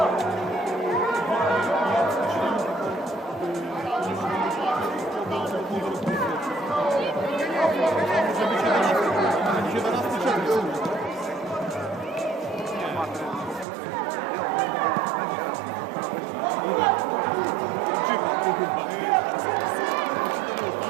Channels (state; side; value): drops out; left; at 13.7 s